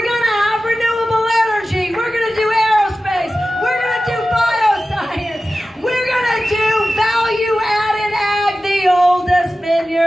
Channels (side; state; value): both; normal; correlation 0.95